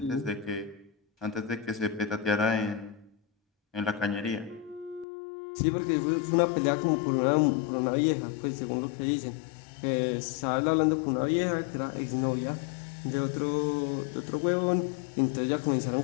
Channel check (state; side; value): drops out; right; at 5.1 s